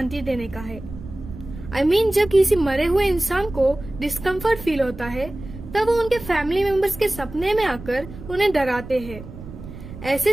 देने का है। I mean, जब किसी मरे हुए इंसान को डिस्कम्फर्ट फील होता है तब वो उनके फैमिली मेंबर्स के सपने में आकर उन्हें डराते हैं। ऐसे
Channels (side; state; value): right; noise; rumble, 14 dB below the sound